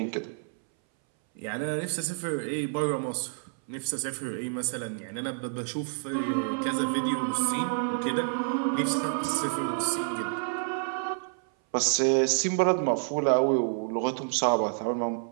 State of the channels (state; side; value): silent; left; 59 dB below the other